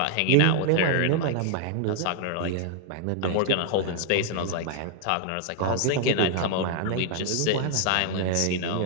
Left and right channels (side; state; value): both; different; correlation -0.01